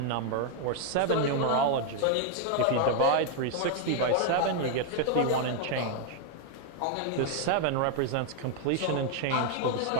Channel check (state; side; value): different; both; correlation 0.00